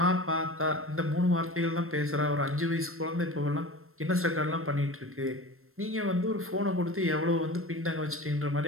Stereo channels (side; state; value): left; late; 0.62 ms